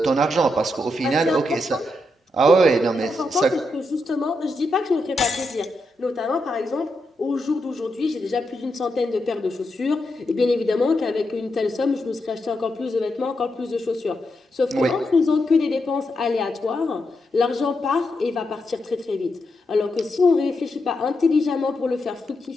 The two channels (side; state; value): both; normal; correlation 0.84